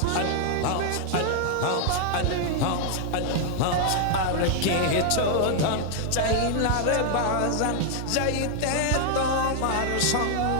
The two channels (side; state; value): both; different; correlation -0.01